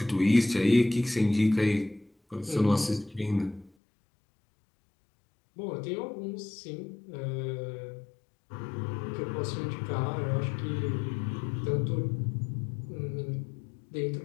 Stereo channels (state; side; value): drops out; right; at 3.7 s